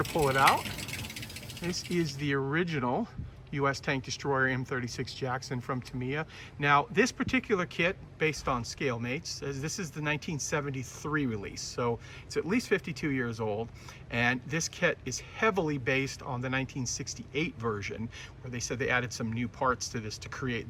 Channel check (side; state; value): both; identical; correlation 1.00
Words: pull it out. This is the original U.S. Tank Destroyer M36 Jackson from Tamiya. Now, this particular kit, based on scale mates, says this is the 1973 release, so it's at least 52 years old. And this kit is heavily based on the 1968 version, where they said they added some new parts to this to